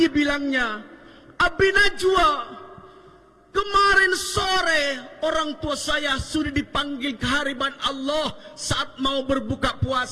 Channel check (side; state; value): both; identical; correlation 1.00